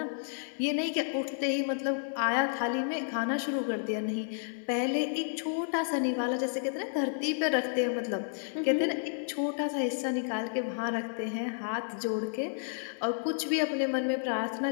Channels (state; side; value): silent; right; digital silence